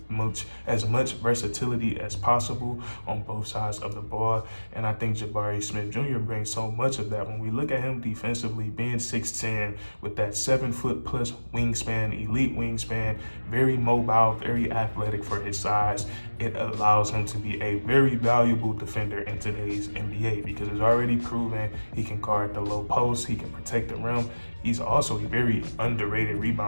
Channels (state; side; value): inverted; both; correlation -1.00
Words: as possible on both sides of the ball. And I think Jabari Smith Jr. brings so much of that. When we look at him defensively, being 6'10", with that 7-foot plus wingspan, elite wingspan, very mobile, very athletic for his size, it allows him to be a very valuable defender in today's NBA because it's already proven he can guard the low post, he can protect the rim. He's also a very underrated